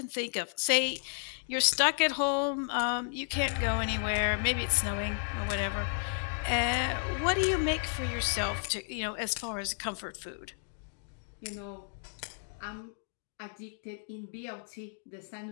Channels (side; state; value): right; silent; digital silence